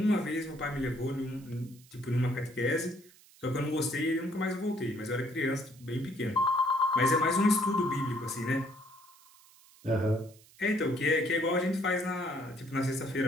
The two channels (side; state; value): right; noise; hiss, 25 dB below the sound